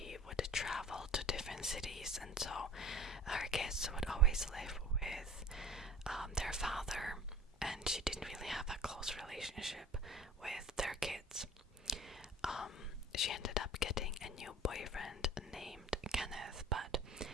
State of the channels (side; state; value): both; normal; correlation 0.43